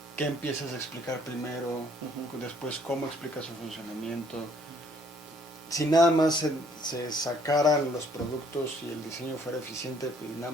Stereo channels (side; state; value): both; normal; correlation 0.63